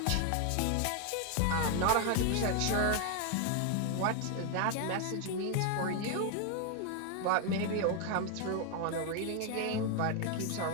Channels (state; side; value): different; both; correlation 0.01